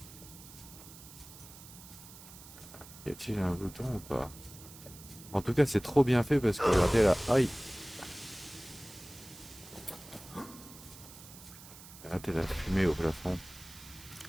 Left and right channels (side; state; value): right; noise; hiss, 17 dB below the sound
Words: Y a-t-il un bouton ou pas? En tout cas, c'est trop bien fait parce que regardez là. Aïe! Regardez la fumée au plafond.